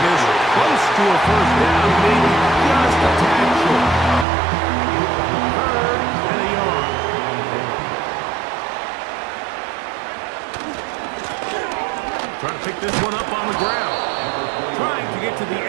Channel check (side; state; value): left; drops out; at 4.2 s